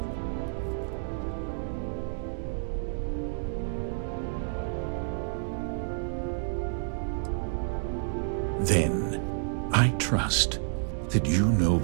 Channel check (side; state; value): left; silent; digital silence